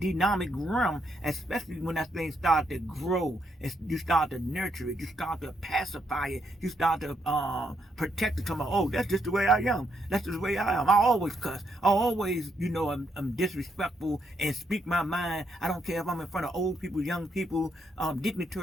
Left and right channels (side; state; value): both; normal; correlation 0.77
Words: realm, especially when that thing start to grow, and you start to nurture it, you start to pacify it, you start to protect it. Oh, that's just the way I am, that's just the way I am. I always cuss, I always, I'm disrespectful and speak my mind. I don't care if I'm in front of old people, young people,